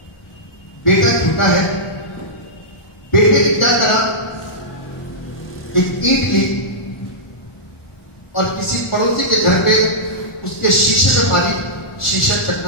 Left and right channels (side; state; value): right; late; 1.4 ms